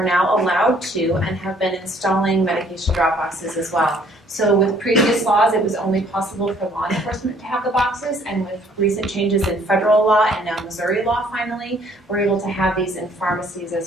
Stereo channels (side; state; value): both; normal; correlation 0.61